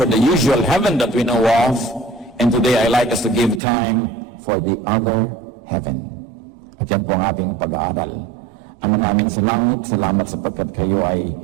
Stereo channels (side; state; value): left; drops out; at 3.6 s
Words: the usual heaven that we know of, and today I like us to give time for the other heaven. At yan po ang ating pag-aaral. Ama namin sa langit, salamat sapagkat kayo ay